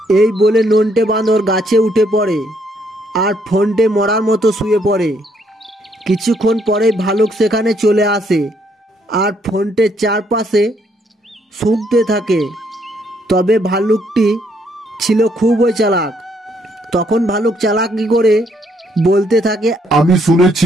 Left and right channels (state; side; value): normal; both; correlation 0.70